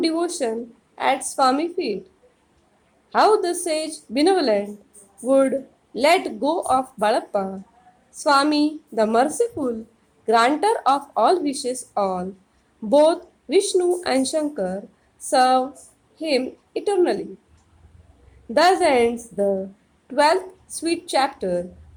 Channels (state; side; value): identical; both; correlation 1.00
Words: devotion at Swami's feet. How the sage benevolent would let go of Balappa. Swami, the merciful, granter of all wishes all, both Vishnu and Shankar serve him eternally. Thus ends the 12th sweet chapter